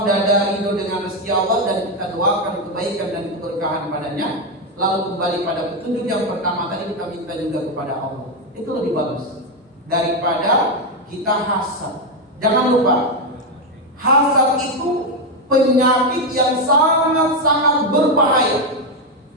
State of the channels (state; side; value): normal; both; correlation 0.06